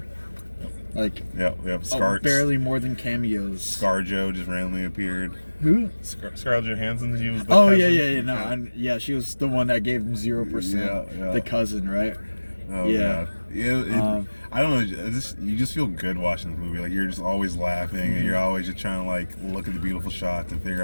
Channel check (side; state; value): both; inverted; correlation -1.00